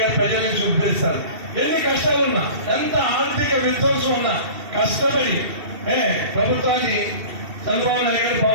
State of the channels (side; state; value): left; late; 2.7 ms